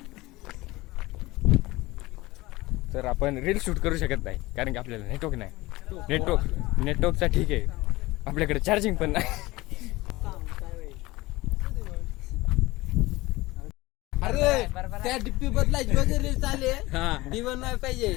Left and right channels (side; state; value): right; quieter; 20.0 dB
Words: तर आपण रील शूट करू शकत नाही कारण की आपल्याला नेटवर्क नाही. नेटवर्कचा ठीक आहे आपल्याकडे चार्जिंग पण नाही. अरे त्या डिप्पी बदलायची वगैरे चाले दिवण नाही पाहिजे.